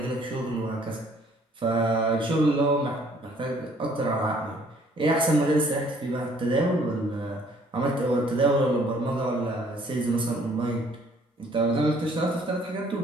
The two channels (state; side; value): normal; both; correlation 0.60